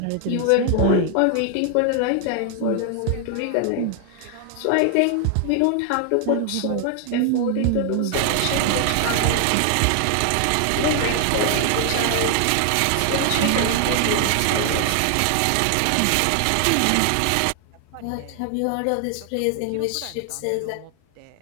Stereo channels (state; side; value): different; both; correlation 0.00